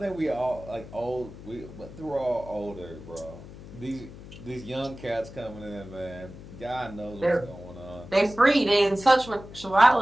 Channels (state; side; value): noise; left; hum, 15 dB below the sound